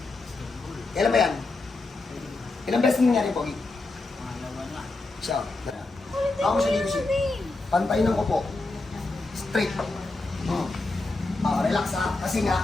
Kailan ba yan? Ilang beses nangyari yung Pogi? Siya. Ako mo siya dito siya. Pantayin ko po. Straight. Relax ha. Kasi nga,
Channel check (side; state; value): right; quieter; 3.3 dB